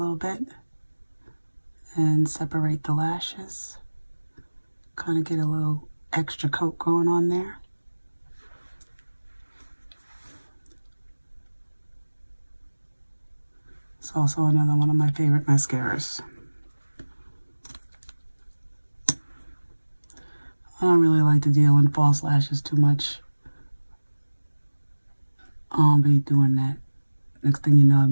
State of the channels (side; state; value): both; inverted; correlation -1.00